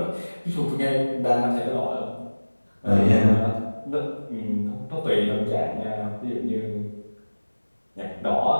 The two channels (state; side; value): inverted; both; correlation -1.00